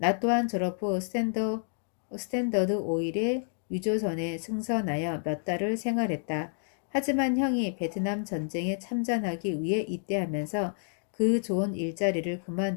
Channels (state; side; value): silent; right; digital silence